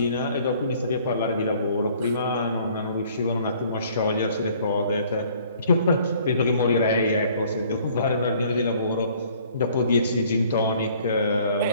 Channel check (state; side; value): inverted; both; correlation -0.57